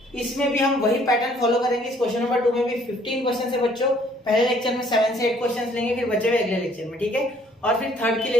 इसमें भी हम वही पैटर्न फॉलो करेंगे। इस क्वेश्चन नंबर 2 में भी 15 क्वेश्चन है बच्चों। पहले लेक्चर में 7 से 8 क्वेश्चन लेंगे, फिर बचे हुए अगले लेक्चर में, ठीक है। और फिर थर्ड के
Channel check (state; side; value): normal; both; correlation 0.61